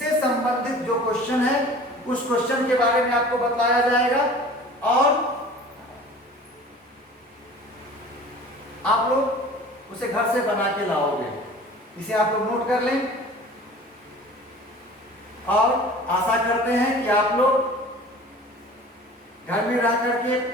संबंधित जो क्वेश्चन है उस क्वेश्चन के बारे में आपको बताया जाएगा और आप लोग उसे घर से बना के लाओगे। इसे आप लोग नोट कर लें और आशा करते हैं कि आप लोग घर में रह करके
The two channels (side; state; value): both; normal; correlation 0.44